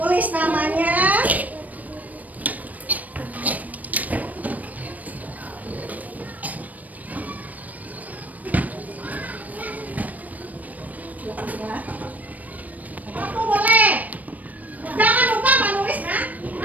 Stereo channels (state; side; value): late; left; 0.075 ms